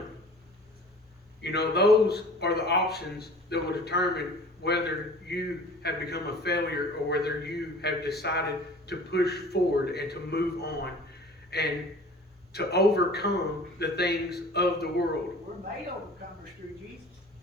You know, those are the options that will determine whether you have become a failure or whether you have decided to push forward and to move on and to overcome the things of the world. We're made overcomers through Jesus.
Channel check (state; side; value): normal; both; correlation 0.45